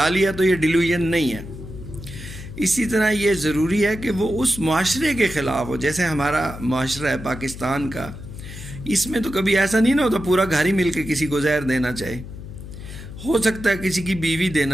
لیا تو یہ ڈیلیوژن نہیں ہے. اسی طرح یہ ضروری ہے کہ وہ اس معاشرے کے خلاف ہو. جیسے ہمارا معاشرہ ہے پاکستان کا، اس میں تو کبھی ایسا نہیں نہ ہوتا پورا گھر ہی مل کے کسی کو زہر دینا چاہے. ہو سکتا ہے کسی کی بیوی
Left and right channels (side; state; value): left; noise; hum, 12 dB below the sound